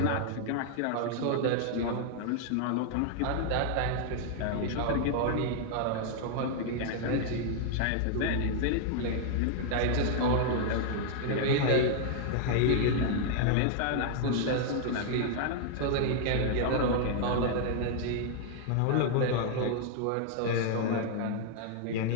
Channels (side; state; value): both; different; correlation 0.00